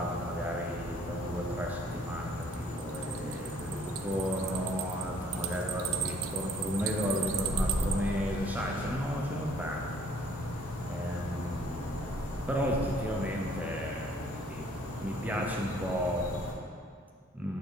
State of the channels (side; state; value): both; normal; correlation 0.60